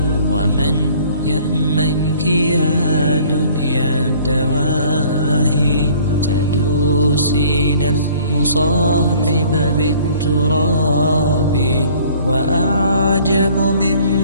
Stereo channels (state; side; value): inverted; both; correlation -0.54